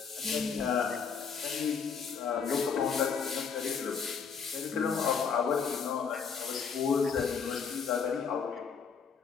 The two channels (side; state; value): right; quieter; 6.2 dB